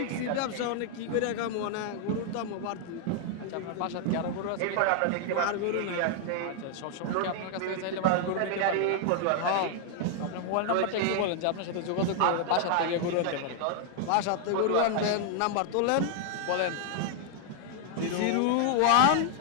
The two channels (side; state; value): both; different; correlation 0.00